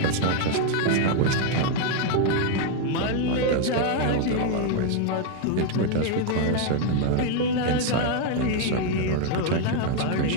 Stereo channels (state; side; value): different; both; correlation 0.00